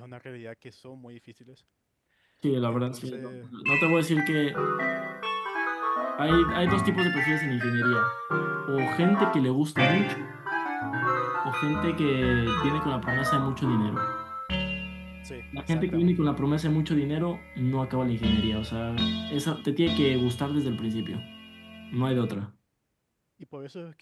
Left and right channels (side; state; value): both; identical; correlation 1.00